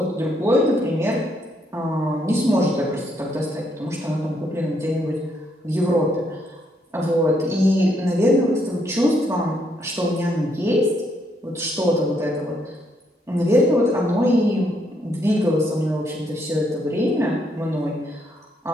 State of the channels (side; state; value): both; normal; correlation 0.73